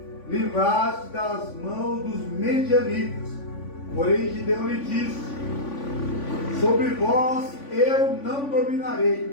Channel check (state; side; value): late; right; 3.5 ms